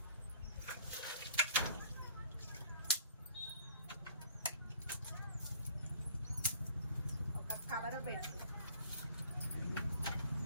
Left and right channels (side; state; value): both; inverted; correlation -0.54